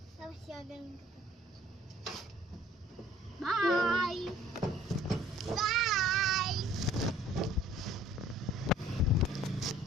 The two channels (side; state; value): both; normal; correlation 0.55